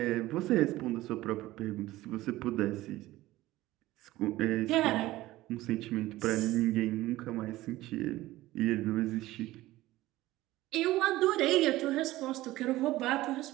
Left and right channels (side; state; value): left; quieter; 17.0 dB